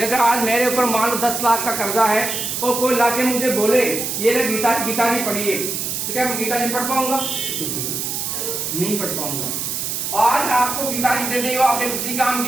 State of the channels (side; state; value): right; noise; hiss, 3 dB below the sound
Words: आज मेरे ऊपर मान लो 10 लाख का कर्जा है, और कोई लाके मुझे बोले ये ले गीता जी पढ़िए, तो क्या मैं गीता जी पढ़ पाऊंगा? नहीं पढ़ पाऊंगा। आज आपको गीता जी दे दी हो, आपके किसी काम